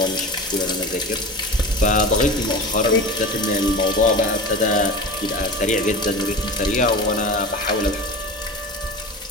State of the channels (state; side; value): normal; both; correlation 0.31